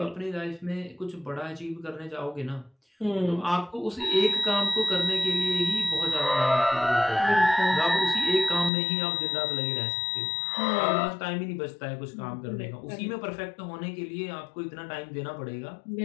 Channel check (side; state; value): right; drops out; at 8.7 s